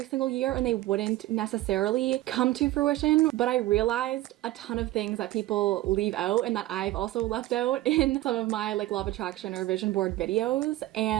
single year and they wouldn't necessarily come to fruition, but I realized a ton of things that people leave out and that I've also left out in some of my like law of attraction or vision board videos,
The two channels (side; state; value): left; quieter; 16.4 dB